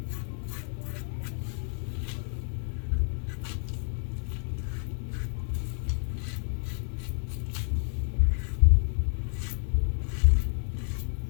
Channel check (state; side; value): silent; right; 58 dB below the other